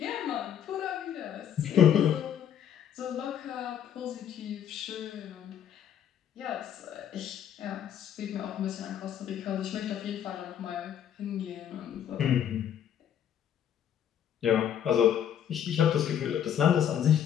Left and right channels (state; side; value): quieter; right; 9.5 dB